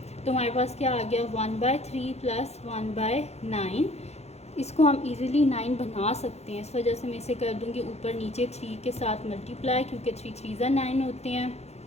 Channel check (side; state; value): right; late; 0.31 ms